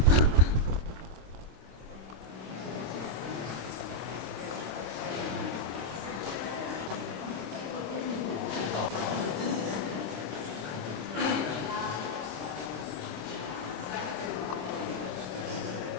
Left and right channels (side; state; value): left; late; 26 ms